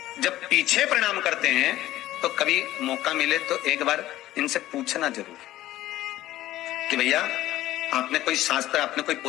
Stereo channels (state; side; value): quieter; right; 14.9 dB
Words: जब पीछे प्रणाम करते हैं तो कभी मौका मिले तो एक बार इनसे पूछना जरूर कि भैया आपने कोई शास्त्र, आपने कोई